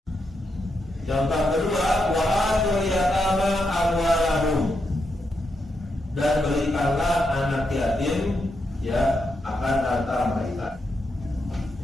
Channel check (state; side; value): normal; both; correlation 0.83